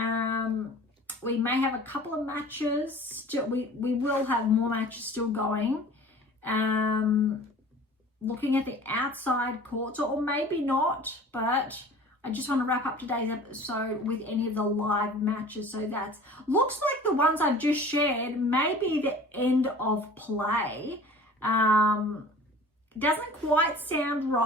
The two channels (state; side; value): normal; both; correlation 0.44